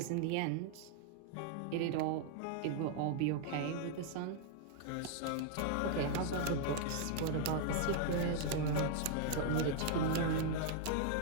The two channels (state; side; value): different; both; correlation 0.00